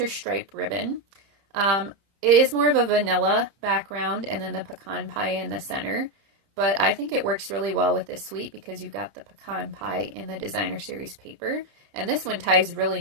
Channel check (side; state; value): left; late; 30 ms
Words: Stripe ribbon. It is more of a vanilla background and then the pecan pie in the center. But I think it works really well with this suite because you've got the pecan pie in the designer series paper. And this one ties really